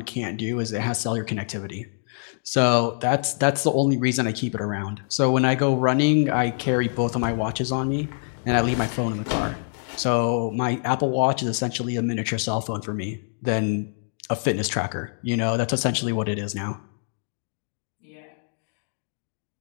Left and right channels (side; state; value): right; silent; digital silence